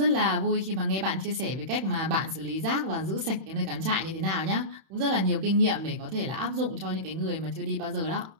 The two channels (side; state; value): left; late; 31 ms